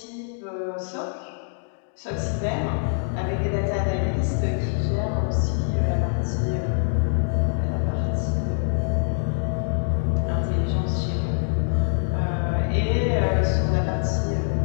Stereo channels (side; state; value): right; silent; digital silence